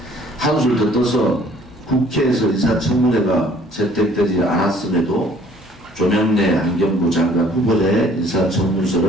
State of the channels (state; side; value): noise; right; hum, 28 dB below the sound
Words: 한술 더 떠서 국회에서 인사청문회가 채택되지 않았음에도 조명래 환경부 장관 후보자의